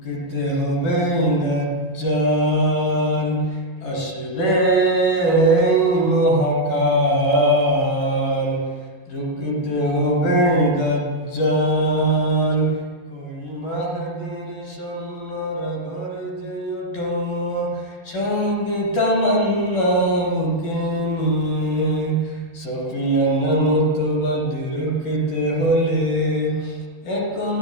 হবে দাজ্জাল। আসবে মহাকাল, রুকতে হবে দাজ্জাল। কই মাহদীর সৈন্যরা গর্জে ওঠো, সঙ্গে তামান্না বুকে নিয়ে। সফিয়ান মতবাদ রুখতে হলে এখন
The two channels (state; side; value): late; right; 12 ms